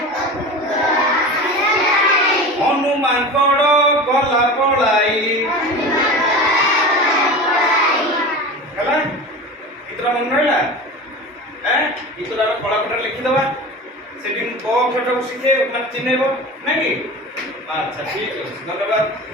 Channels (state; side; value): normal; both; correlation 0.32